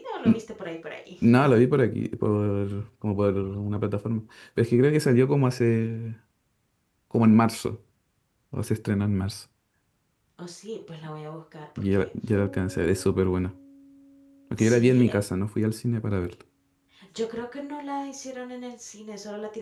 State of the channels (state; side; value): identical; both; correlation 1.00